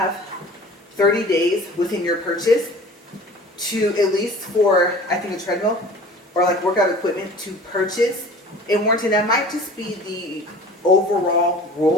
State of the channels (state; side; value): normal; both; correlation 0.43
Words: 30 days within your purchase to, at least for, I think, a treadmill or like workout equipment, to purchase a warranty. That might just be the overall